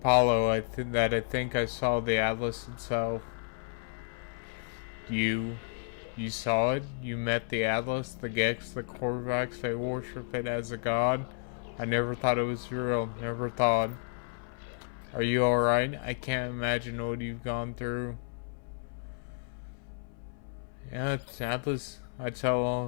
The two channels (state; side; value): silent; right; 57 dB below the other